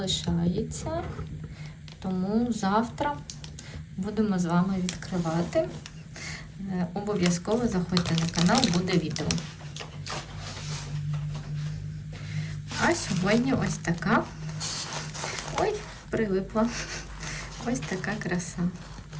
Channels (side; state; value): both; identical; correlation 1.00